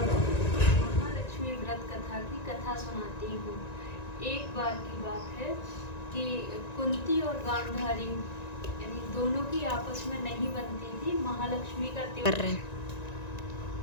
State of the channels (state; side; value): late; right; 1.9 ms